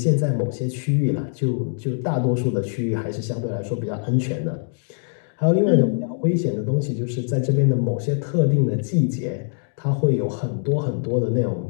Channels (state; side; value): silent; right; digital silence